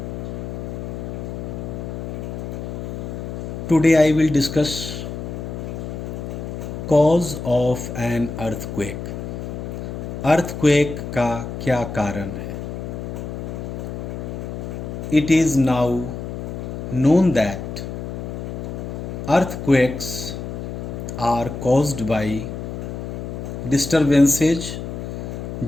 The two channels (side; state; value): left; noise; hum, 6 dB below the sound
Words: Today I will discuss cause of an earthquake. Earthquake का क्या कारण है? It is now known that earthquakes are caused by disturbances